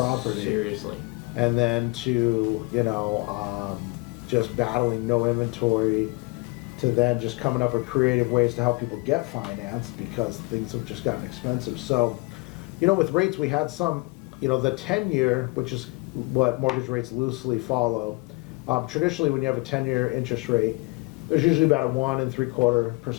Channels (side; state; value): right; quieter; 26.7 dB